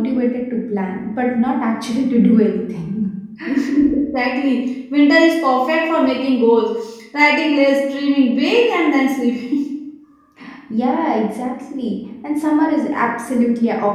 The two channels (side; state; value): both; identical; correlation 1.00